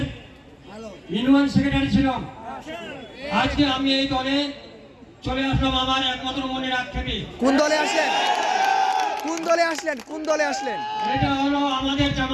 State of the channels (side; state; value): both; identical; correlation 1.00